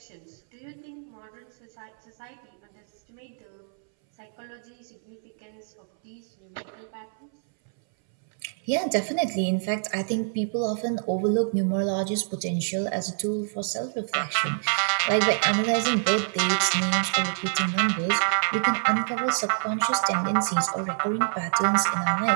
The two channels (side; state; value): left; silent; 60 dB below the other